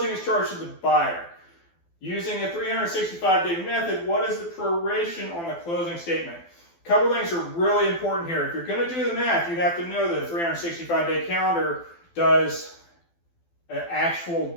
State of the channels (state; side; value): late; right; 12 ms